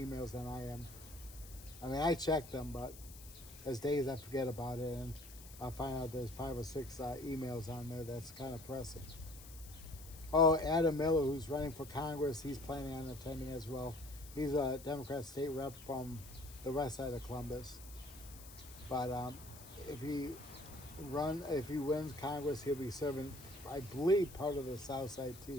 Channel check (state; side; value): noise; left; hiss, 17 dB below the sound